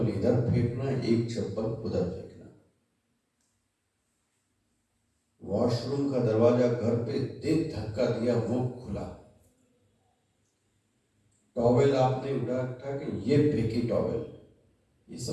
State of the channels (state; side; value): identical; both; correlation 1.00